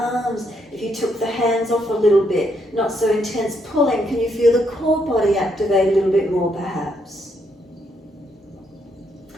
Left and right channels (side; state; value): both; normal; correlation 0.75